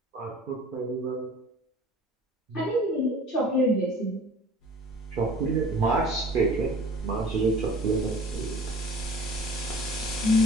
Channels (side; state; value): both; normal; correlation 0.45